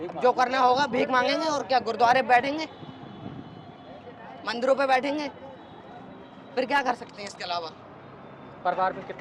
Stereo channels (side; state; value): both; identical; correlation 1.00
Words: जो करना होगा भीख मांगेंगे और क्या, गुरुद्वारे बैठेंगे, मंदिरों पे बैठेंगे, फिर क्या कर सकते हैं इसके अलावा? परिवार में